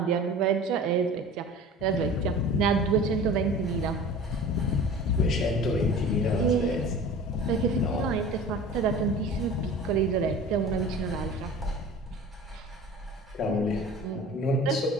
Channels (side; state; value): both; normal; correlation 0.39